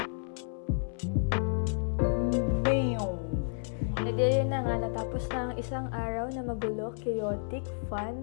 Yun na nga, natapos na ang isang araw na magulo, chaotic, fun,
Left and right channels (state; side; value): silent; right; 57 dB below the other